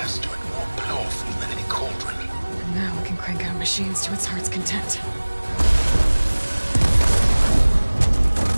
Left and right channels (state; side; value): inverted; both; correlation -1.00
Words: and more powerful than any cauldron. And now we can crank out machines to its heart's content.